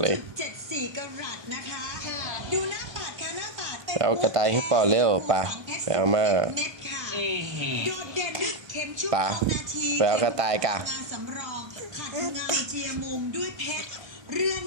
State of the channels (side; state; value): left; late; 1.3 ms